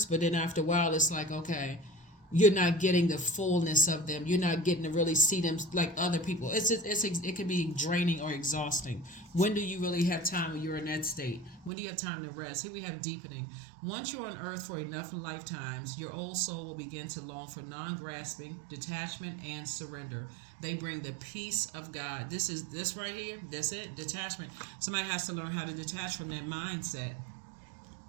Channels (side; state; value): left; drops out; at 11.7 s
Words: but then after a while it's like, okay, you're not getting the fullness of them. You're not getting to really see them like other people. It can be draining or exhausting. When do you really have time when you're in that state? When do you have time to rest? Here we have deepening. Once you're on earth for enough lifetimes, your old soul will begin to long for non-grasping, detachment, and surrender. They bring the peace of God. This right here. That's it. Detachment. Somebody has to learn how to detach from that mindset.